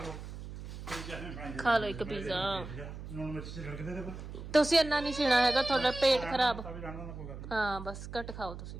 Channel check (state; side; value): noise; right; hum, 10 dB below the sound